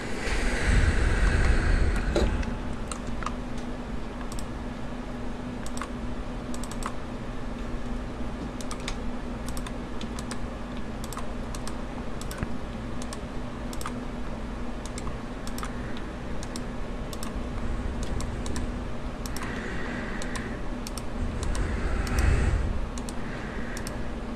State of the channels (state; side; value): identical; both; correlation 1.00